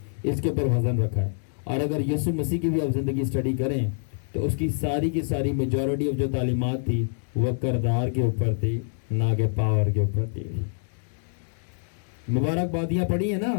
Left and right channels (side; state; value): right; silent; digital silence